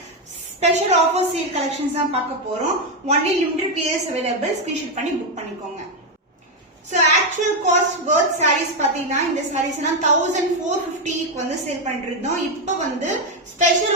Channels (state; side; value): normal; both; correlation 0.05